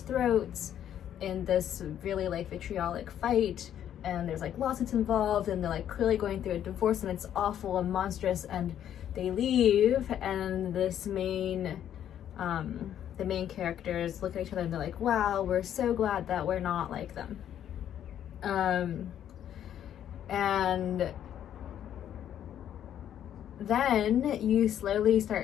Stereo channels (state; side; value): quieter; right; 10.3 dB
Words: in this really like vitriolic fight, and there's like lawsuits involved, and they're like clearly going through a divorce, and it's awful and monstrous, and they leave, and this the main characters look at each other and they're like, wow, we're so glad that we're not like them. And then you slowly